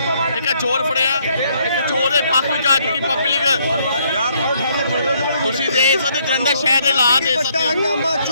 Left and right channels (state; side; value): inverted; both; correlation -0.69